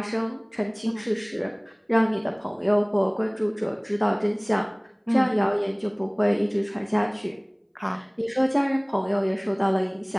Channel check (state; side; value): identical; both; correlation 1.00